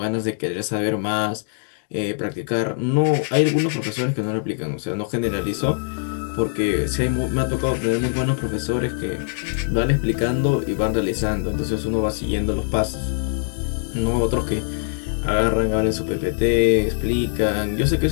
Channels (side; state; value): right; silent; digital silence